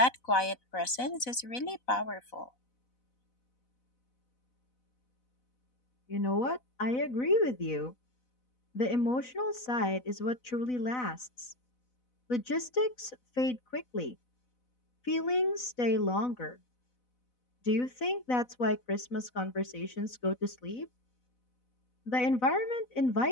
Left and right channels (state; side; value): late; right; 4.0 ms